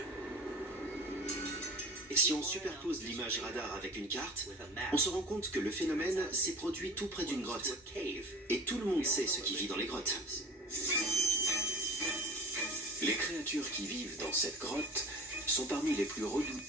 Et si on superpose l'image radar avec une carte, on se rend compte que le phénomène s'est produit tout près d'une grotte. Et tout le monde sait ce qui vit dans les grottes. Les créatures qui vivent dans cette grotte sont parmi les plus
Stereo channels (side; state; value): both; normal; correlation 0.40